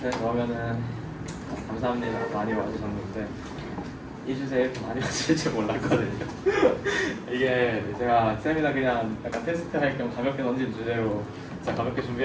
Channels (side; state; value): both; identical; correlation 1.00